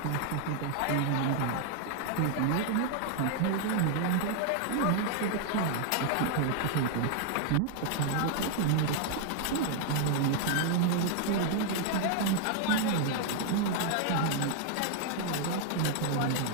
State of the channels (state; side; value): different; both; correlation 0.00